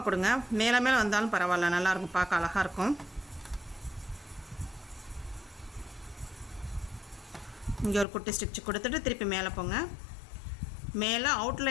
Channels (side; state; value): right; drops out; at 8.1 s